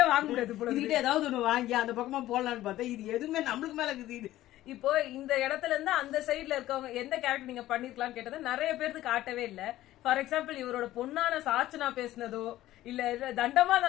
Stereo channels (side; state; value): right; quieter; 14.8 dB